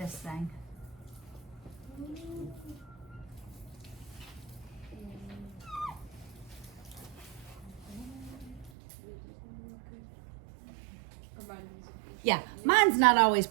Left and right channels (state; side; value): drops out; left; at 8.7 s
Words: thing. Yeah, mine's not always